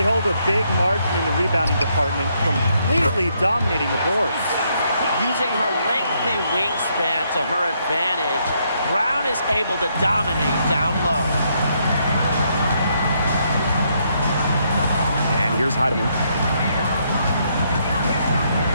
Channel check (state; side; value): inverted; both; correlation -0.74